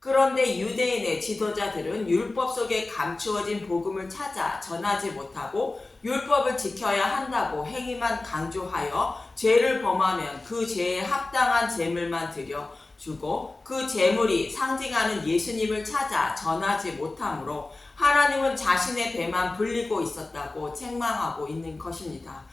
유대인의 지도자들은 율법 속에 감추어진 복음을 찾아 전하지 못하고 율법을 지켜야 한다고 행위만 강조하여 죄를 범하면 그 죄에 합당한 제물만 드려주고 그 제물이 상징하는 예수님을 찾아 전하지 못하므로 하나님은 자신의 배만 불리고 있었다고 책망하고 있는 것입니다.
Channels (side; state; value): right; quieter; 3.2 dB